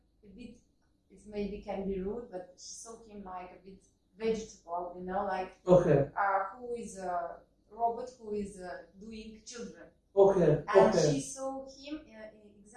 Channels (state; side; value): identical; both; correlation 1.00